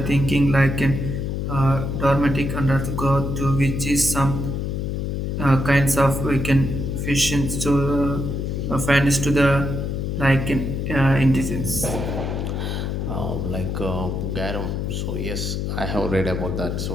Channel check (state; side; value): noise; left; hum, 2 dB below the sound